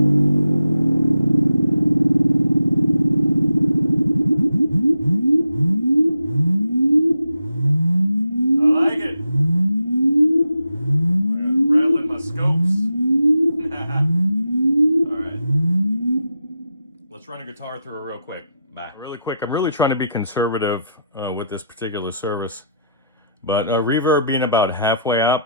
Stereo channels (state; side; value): inverted; both; correlation -0.80